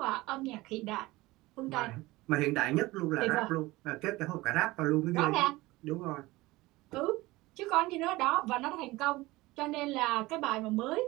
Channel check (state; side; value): quieter; left; 20.0 dB